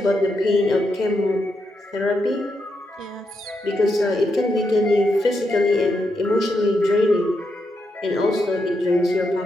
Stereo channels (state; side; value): normal; both; correlation 0.83